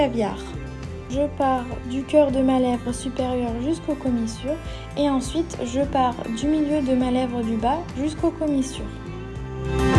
Je pars du cœur de ma lèvre supérieure jusqu'aux commissures et ensuite je pars du milieu de ma lèvre du bas jusqu'aux commissures.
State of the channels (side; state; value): both; identical; correlation 1.00